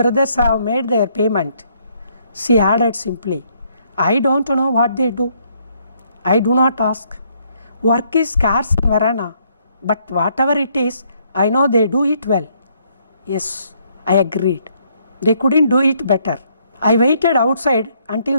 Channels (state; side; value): inverted; both; correlation -0.69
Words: have made their payment. She added simply, I don't know what they do. I do not ask. Work is scarce in Verona, but whatever it is, I know they do it well. Yes, I agreed. They couldn't do it better. I waited outside until